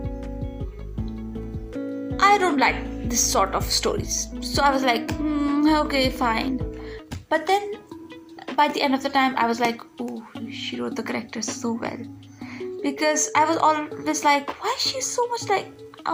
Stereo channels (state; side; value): identical; both; correlation 1.00